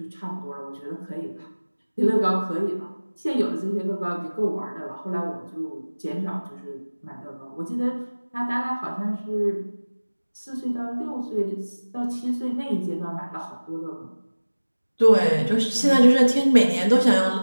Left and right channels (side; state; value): both; inverted; correlation -1.00